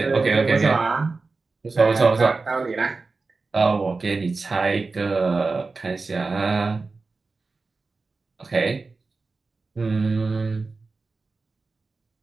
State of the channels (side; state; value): left; quieter; 3.9 dB